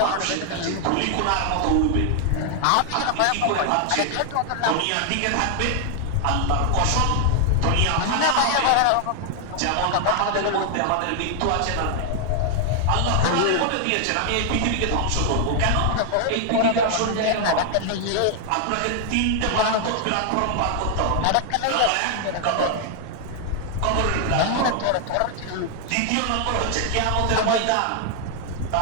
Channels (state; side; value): different; both; correlation 0.00